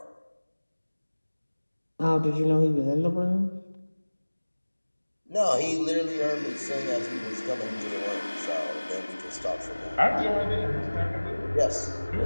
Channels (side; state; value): both; inverted; correlation -1.00